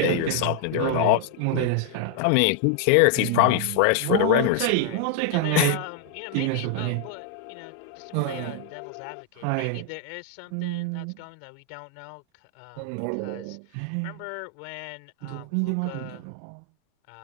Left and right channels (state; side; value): different; both; correlation 0.00